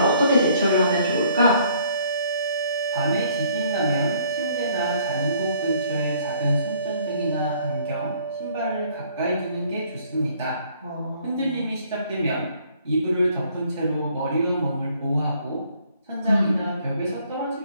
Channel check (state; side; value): inverted; both; correlation -0.61